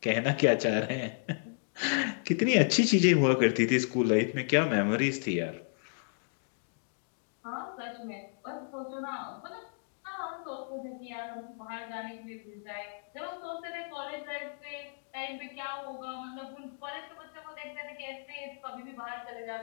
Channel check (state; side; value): silent; right; digital silence